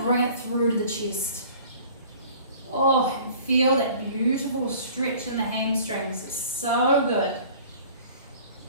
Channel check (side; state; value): both; inverted; correlation -0.49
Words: bring it through to the chest. Oh, and feel that beautiful stretch in the hamstrings. It's so good.